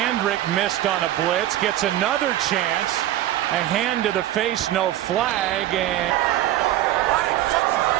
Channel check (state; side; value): quieter; left; 13.5 dB